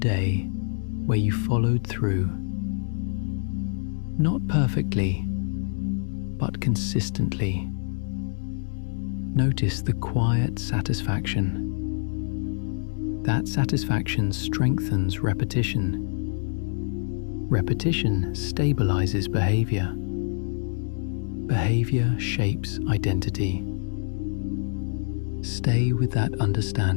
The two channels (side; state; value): right; silent; digital silence